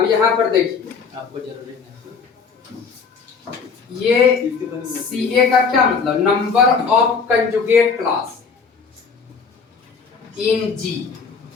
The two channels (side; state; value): right; quieter; 5.4 dB